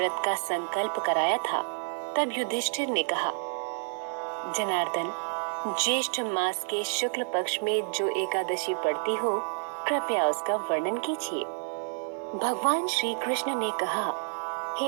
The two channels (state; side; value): silent; left; digital silence